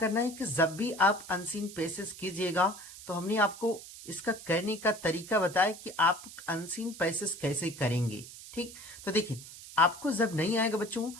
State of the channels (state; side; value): noise; right; hiss, 15 dB below the sound